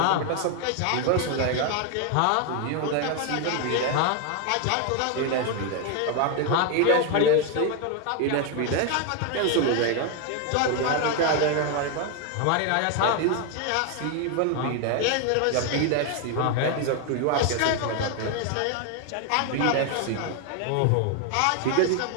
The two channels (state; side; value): different; both; correlation 0.01